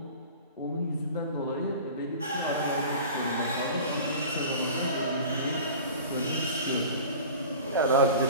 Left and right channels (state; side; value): inverted; both; correlation -0.39